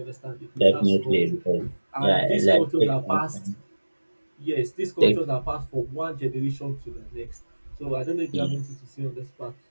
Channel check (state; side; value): inverted; both; correlation -1.00